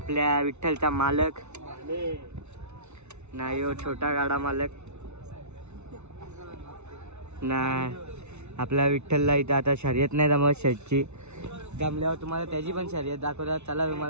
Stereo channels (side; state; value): left; late; 0.81 ms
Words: विठ्ठलचा मालक ना. यो छोटा गाडा मालक ना. आपल्या विठ्ठलला इथं आता शर्यत नाही जमत शेटची. जमल्यावर तुम्हाला त्याची पण शर्यत दाखवतात. चला